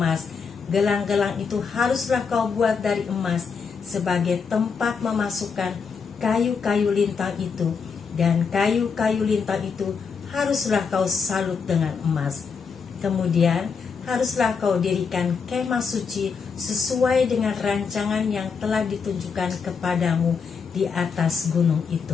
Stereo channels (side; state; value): right; quieter; 5.7 dB